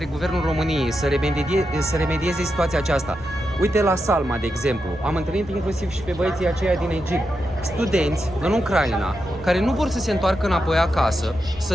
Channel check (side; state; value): both; normal; correlation 0.86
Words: Guvernul României să remedieze situația aceasta. Uite, la Salma, de exemplu, am întâlnit inclusiv și pe băieții aceia din Egipt, studenți în Ucraina, care nu vor să se întoarcă înapoi acasă. Să